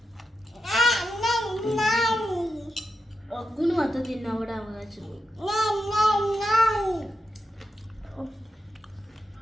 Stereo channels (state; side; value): normal; both; correlation 0.87